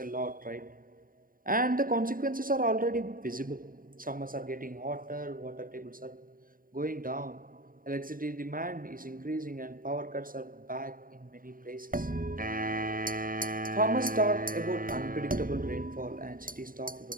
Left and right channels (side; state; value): left; late; 0.41 ms